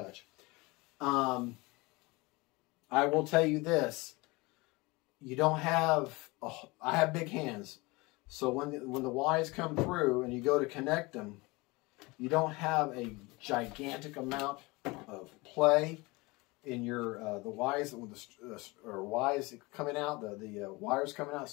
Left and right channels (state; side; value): quieter; right; 24.2 dB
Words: I will tell you this. You don't have, I have big hands, so when the Ys come through and you go to connect them, you don't have a gigantic amount of play in your the Ys coming out, the wires coming out,